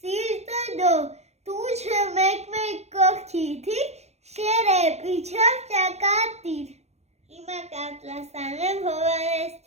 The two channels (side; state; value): left; late; 0.31 ms